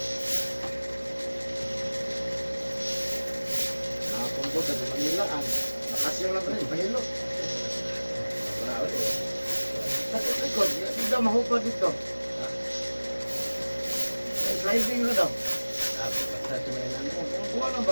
Nakakumpot at Manilaan. Nakasyaw lang rin, pahilo. Sakit likod, hindi daw mahupad dito. Sliding na daw. Sa tumayan namin. Kuha na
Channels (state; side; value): inverted; both; correlation -1.00